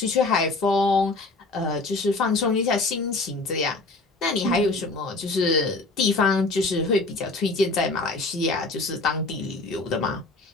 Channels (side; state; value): right; quieter; 3.3 dB